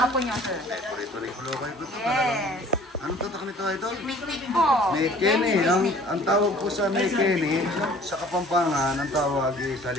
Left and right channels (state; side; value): normal; both; correlation 0.51